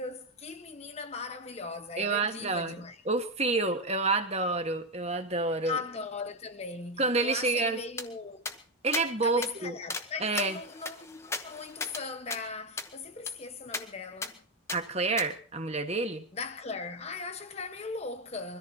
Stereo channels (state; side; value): normal; both; correlation 0.07